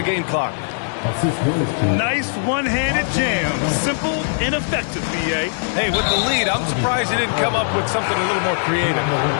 game clock. Nice one-handed jam. Simple and effective, B.A. Hey, with the lead, I'm surprised he didn't come up with something a little more creative.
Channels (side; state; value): right; silent; digital silence